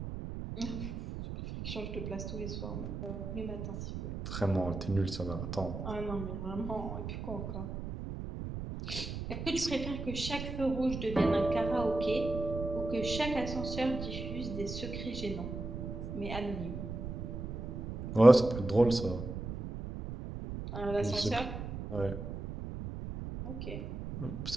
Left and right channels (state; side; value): noise; right; rumble, 6 dB below the sound